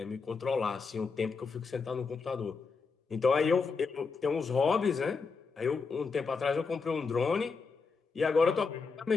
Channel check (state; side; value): quieter; right; 4.8 dB